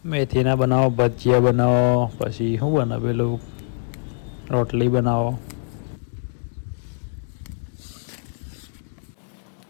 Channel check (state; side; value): silent; right; digital silence